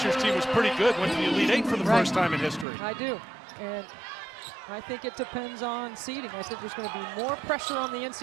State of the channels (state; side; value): drops out; left; at 2.7 s